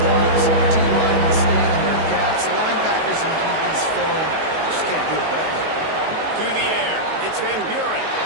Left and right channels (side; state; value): left; late; 19 ms